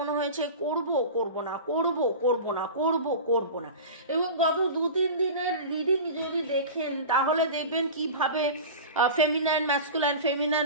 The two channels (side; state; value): both; inverted; correlation -0.31